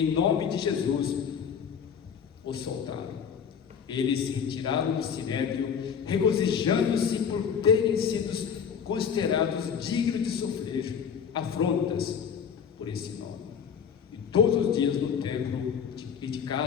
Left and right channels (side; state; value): right; quieter; 7.1 dB